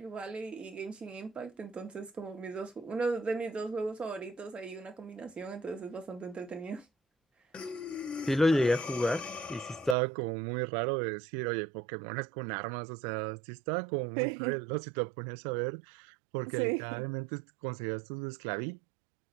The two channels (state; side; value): drops out; left; at 10.0 s